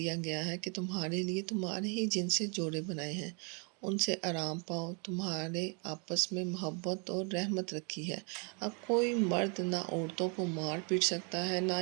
گیا ہے کہ تمہارے لیے تمہارے ہی جن سے جوڑے بنائے ہیں، ان سے آرام پاؤ، تمہارے آپس میں محبت اور رحمت رکھی ہے۔ اب کوئی مرد نہ عورتوں کو مار پیٹ سکتا ہے، نہ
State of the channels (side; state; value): left; quieter; 36.3 dB